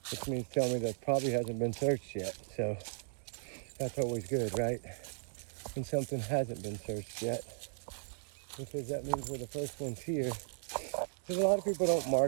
which means tell me that probably hasn't been searched yet. So that's always good, right? When something hasn't been searched yet, because that means we're the first ones here. Because a lot of people don't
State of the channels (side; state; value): left; silent; digital silence